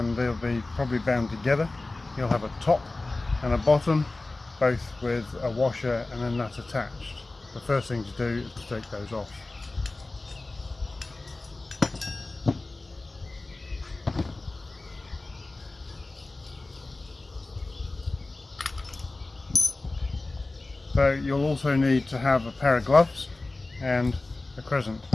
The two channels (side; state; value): right; quieter; 3.1 dB